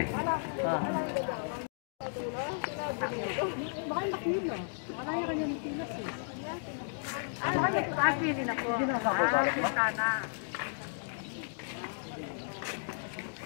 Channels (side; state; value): right; silent; digital silence